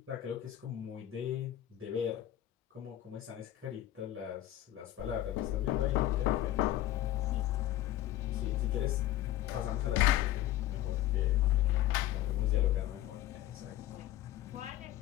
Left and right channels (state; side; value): quieter; right; 13.8 dB